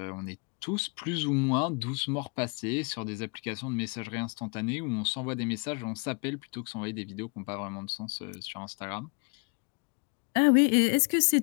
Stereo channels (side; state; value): right; quieter; 34.3 dB